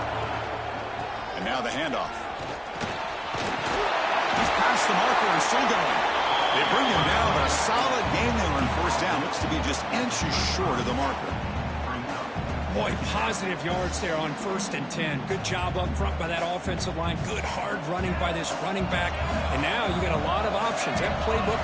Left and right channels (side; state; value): both; identical; correlation 1.00